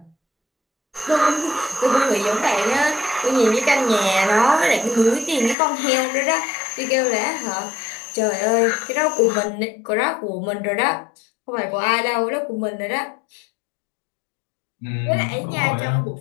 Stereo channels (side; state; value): right; drops out; at 5.6 s